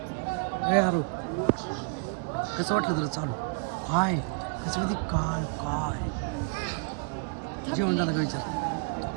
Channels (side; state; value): left; quieter; 34.6 dB